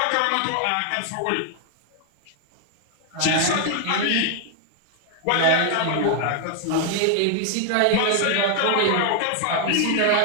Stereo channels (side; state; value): both; different; correlation 0.00